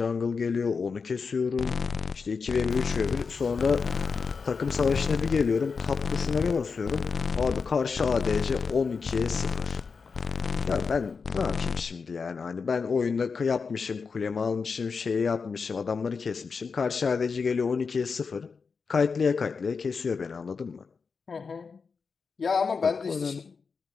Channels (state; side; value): quieter; right; 5.2 dB